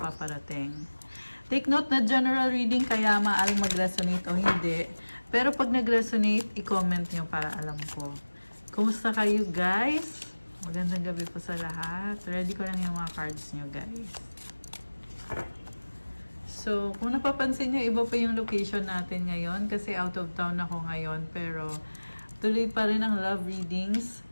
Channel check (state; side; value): inverted; both; correlation -1.00